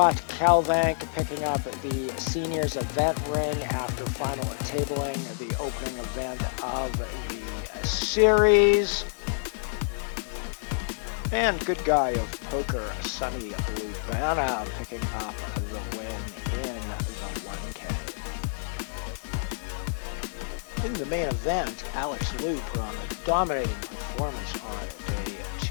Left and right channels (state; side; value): silent; right; digital silence